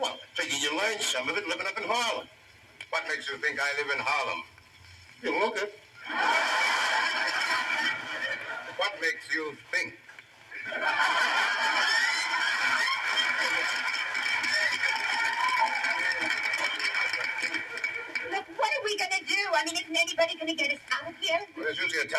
I figure you learned some of it living up in Harlem. What makes you think I live in Harlem? You look it. What makes you think? Look, what are we going to do? I mean, isn't anybody going to get us out of here? Well, there's usually a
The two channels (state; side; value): identical; both; correlation 1.00